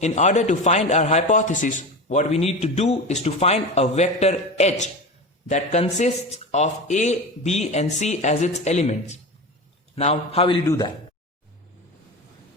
order to find our hypothesis, what we need to do is to find a vector h that consists of a, b and c as its elements. Now, how will you do that?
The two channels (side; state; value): both; normal; correlation 0.26